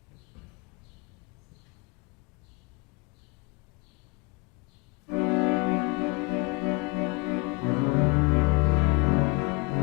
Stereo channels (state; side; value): quieter; right; 28.7 dB